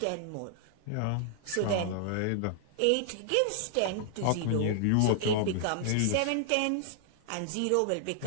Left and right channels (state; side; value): different; both; correlation 0.00